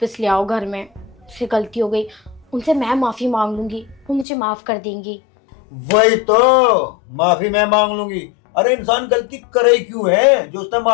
ले आओ घर में। उससे गलती हो गई, उनसे मैं माफ़ी मांग लूंगी, वो मुझे माफ़ कर देंगी। वही तो, माफी मैं मांग लूंगी। अरे इंसान गलती करे ही क्यों है जो उसने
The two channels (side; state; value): right; drops out; at 4.2 s